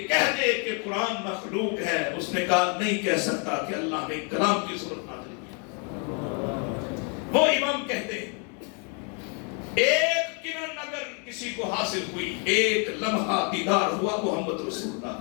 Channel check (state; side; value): quieter; right; 36.8 dB